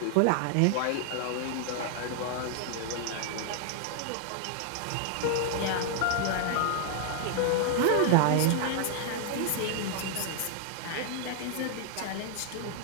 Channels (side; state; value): both; different; correlation 0.00